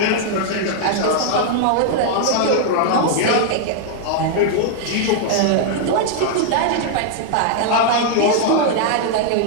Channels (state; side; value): different; both; correlation -0.01